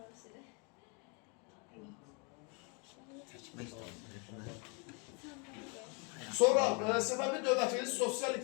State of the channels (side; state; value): right; quieter; 34.1 dB